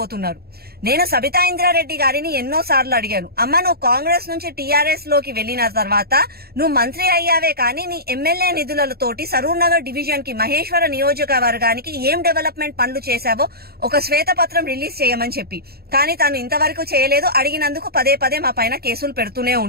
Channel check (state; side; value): late; left; 0.45 ms